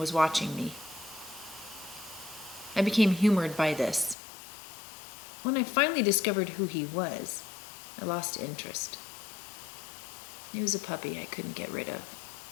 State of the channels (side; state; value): right; drops out; at 4.2 s